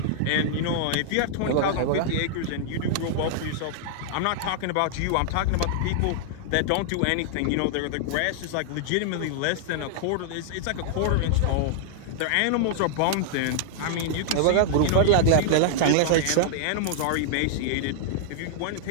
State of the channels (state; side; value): different; both; correlation -0.01